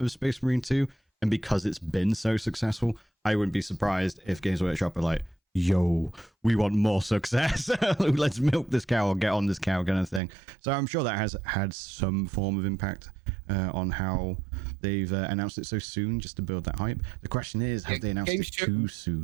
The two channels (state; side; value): drops out; left; at 10.2 s